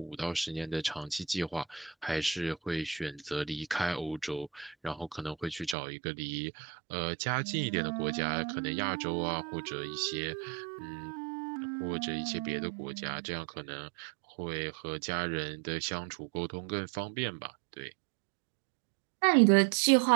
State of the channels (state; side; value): drops out; left; at 5.8 s